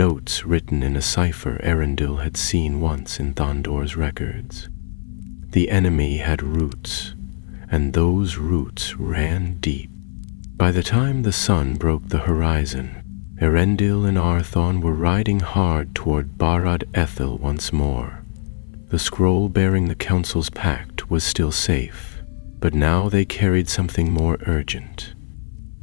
written in a cipher Arundel had seen once in Thandor's records. The enemy had roots, and those roots ran deep. By the time the sun broke the horizon, Arundel and Arthon were riding hard toward Barad Ethel once more. The scroll bearing the council's pact was still safe, but now they carried something more urgent,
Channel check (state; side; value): silent; right; 57 dB below the other